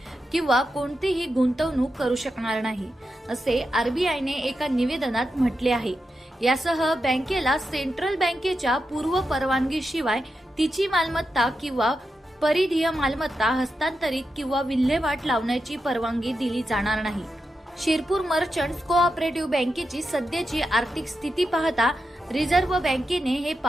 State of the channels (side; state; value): both; normal; correlation 0.88